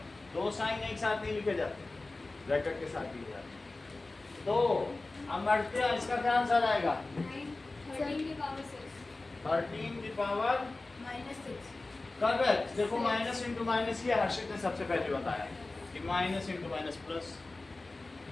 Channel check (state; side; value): quieter; right; 3.2 dB